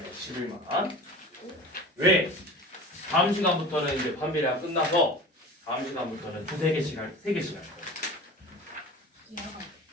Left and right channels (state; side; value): normal; both; correlation 0.36